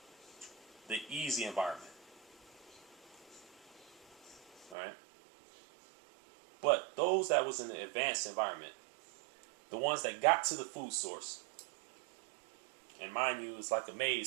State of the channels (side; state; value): left; drops out; at 4.8 s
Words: the easy environment. All right? But those that was in the advanced environment, the ones that got to the food source, and mind you, it's like a